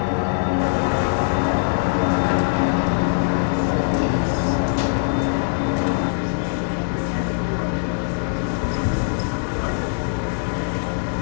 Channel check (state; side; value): silent; right; 64 dB below the other